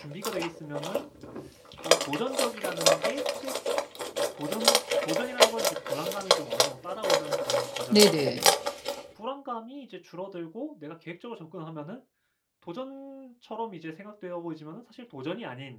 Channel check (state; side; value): identical; both; correlation 1.00